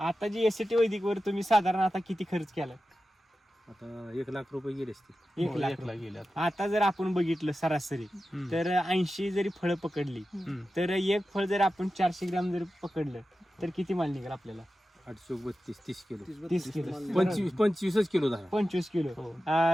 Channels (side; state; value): both; normal; correlation 0.93